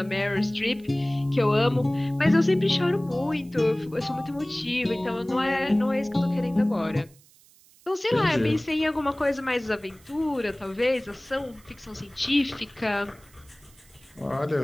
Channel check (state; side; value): noise; right; hiss, 28 dB below the sound